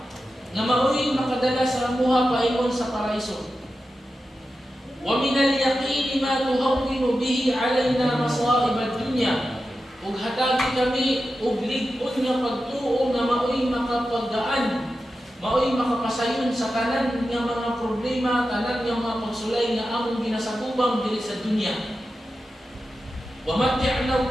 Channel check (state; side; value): normal; both; correlation 0.91